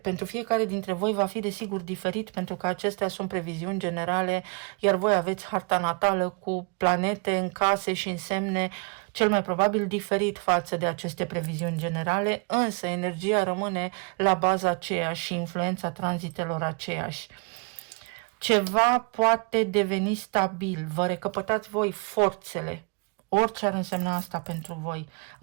fiecare dintre voi va fi desigur diferit, pentru că acestea sunt previziuni generale, iar voi aveți harta natală cu planete în case și în semne cel mai probabil diferit față de aceste previziuni generale, însă energia rămâne la baza aceeași și influența tranzitelor aceeași. Ceva poate deveni stabil, vă recăpătați voi forțele, orice ar însemna asta pentru voi.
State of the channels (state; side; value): quieter; left; 32.8 dB